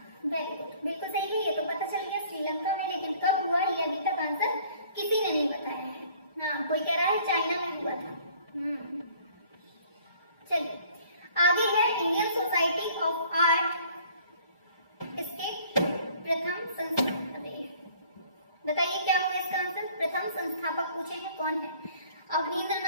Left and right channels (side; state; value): both; inverted; correlation -0.56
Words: वेरी गुड, बिल्कुल सही है, ये तो पता चल गया श्रीलंका में, लेकिन कब हुआ ये अभी तक आंसर किसी ने नहीं बताया है। हाँ, कोई कह रहा है चाइना में हुआ था। चलिए आगे है इंडियन सोसाइटी ऑफ आर्ट, इसके प्रथम बताइए क्या होगा इसका आंसर। प्रथम संस्थापक पूछे हैं कौन है।